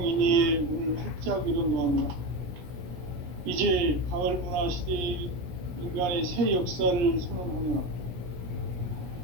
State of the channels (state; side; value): late; left; 17 ms